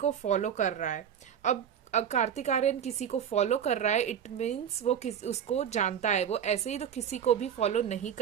फॉलो कर रहा है। अब कार्तिक आर्यन किसी को फॉलो कर रहा है, इट मीन्स वो उसको जानता है। वो ऐसे ही तो किसी को भी फॉलो नहीं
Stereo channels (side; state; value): left; quieter; 8.6 dB